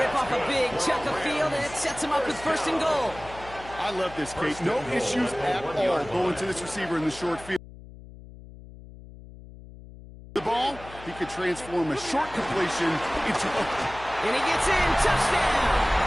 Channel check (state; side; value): noise; left; hum, 17 dB below the sound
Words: off a big chunk of field, and it sets them up with first and goal. I love this, Kate. No issues at all going to this receiver in the short field. The ball, he could transform a short completion into a... And he gets in. Touchdown!